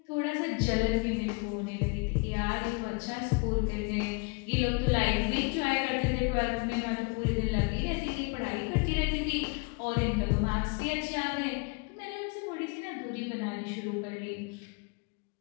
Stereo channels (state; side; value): quieter; right; 31.3 dB